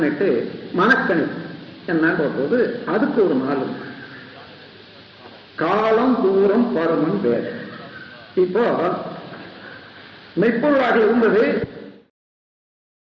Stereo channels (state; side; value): identical; both; correlation 1.00